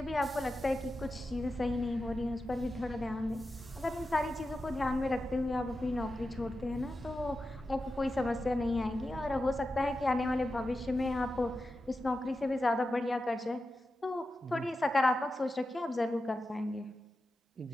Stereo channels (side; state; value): both; normal; correlation 0.91